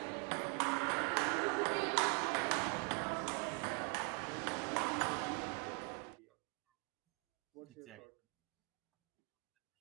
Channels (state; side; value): quieter; left; 34.9 dB